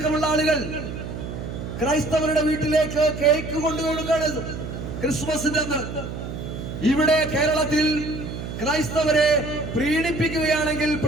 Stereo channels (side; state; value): right; noise; hum, 7 dB below the sound